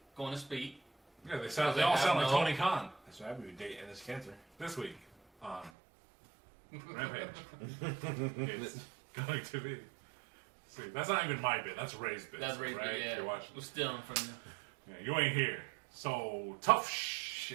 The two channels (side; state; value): left; drops out; at 5.7 s